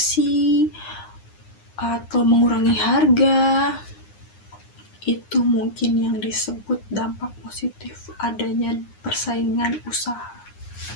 atau mengurangi harga. Itu mungkin yang disebut dampak positif adanya persaingan usaha.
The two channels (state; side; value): late; right; 9.7 ms